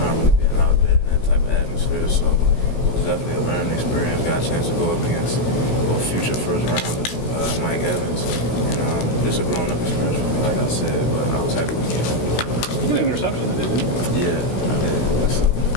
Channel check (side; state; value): right; late; 16 ms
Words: really being out there in that type of atmosphere, so it was definitely a learning experience. Got a chance to go up against future first rounder, Mike Evans, and just a grown-up experience for me, like I said, but I was happy with it. You got an interception that did it? Yeah, I did.